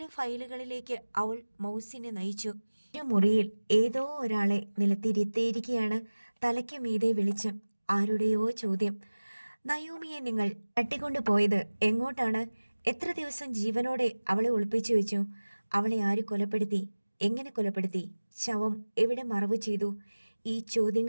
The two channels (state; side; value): inverted; both; correlation -1.00